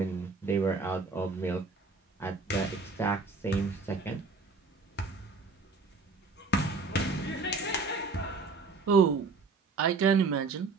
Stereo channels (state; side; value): quieter; left; 4.1 dB